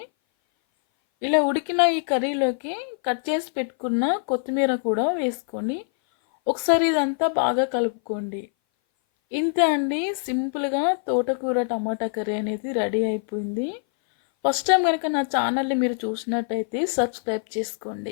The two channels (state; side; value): silent; right; 58 dB below the other